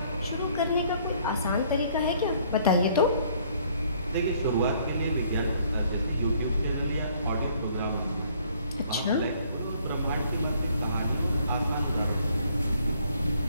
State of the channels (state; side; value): inverted; both; correlation -0.62